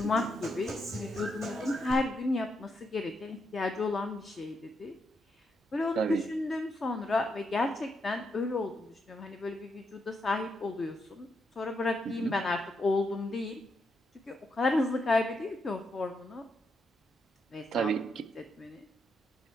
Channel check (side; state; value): both; normal; correlation 0.81